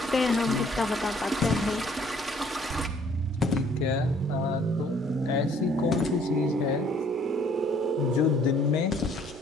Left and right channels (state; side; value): normal; both; correlation 0.60